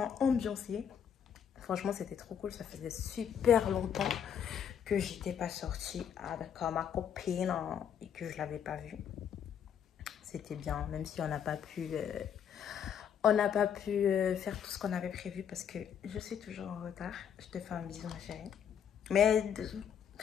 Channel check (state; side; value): quieter; right; 8.4 dB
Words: ambiancée. Franchement, c'était trop cool. Ça faisait super longtemps que j'étais pas sortie avec ma copine hein, et que je l'avais pas vue. C'était bien, même si on n'a pas pu faire tout ce qu'on avait prévu parce que je suis toujours en retard. Je te fais un bisou, ma chérie. Mais